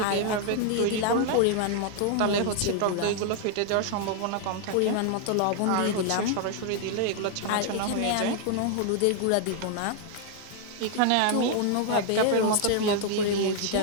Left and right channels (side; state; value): both; different; correlation 0.00